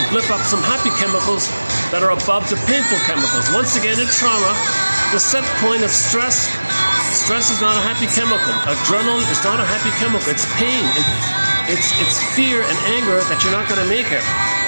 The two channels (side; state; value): both; inverted; correlation -1.00